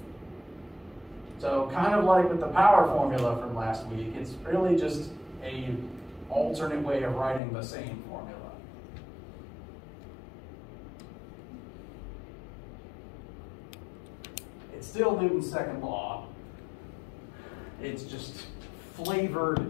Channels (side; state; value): right; drops out; at 7.4 s